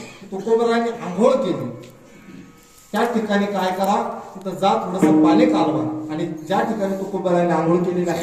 तुकोबारायांनी आंघोळ केली त्या ठिकाणी काय करा, तिथं जा थोडंसं पाणी कालवा आणि ज्या ठिकाणी तुकोबारायांनी आंघोळ केलेली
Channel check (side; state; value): both; identical; correlation 1.00